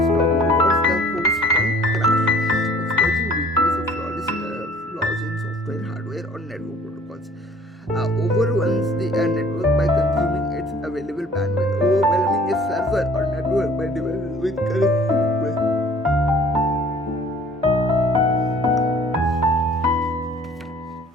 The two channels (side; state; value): both; normal; correlation 0.53